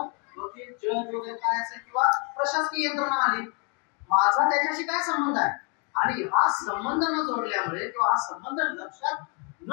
वगैरे काय असेल किंवा प्रशासकीय यंत्रणा आली, माझा त्याच्याशी काय संबंध आहे. आणि हा संबंध न जोडल्यामुळे किंवा हा संबंध लक्षात न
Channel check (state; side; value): quieter; right; 36.1 dB